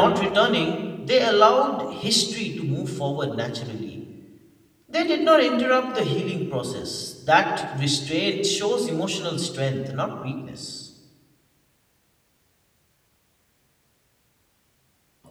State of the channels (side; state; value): both; identical; correlation 1.00